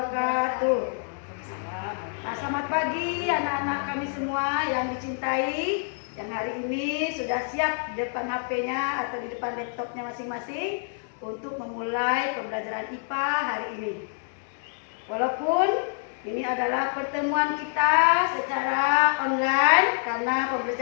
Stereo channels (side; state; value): right; silent; digital silence